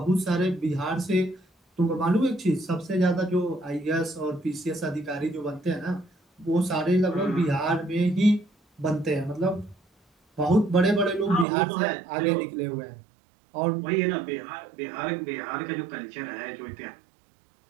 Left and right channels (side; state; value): left; drops out; at 11.5 s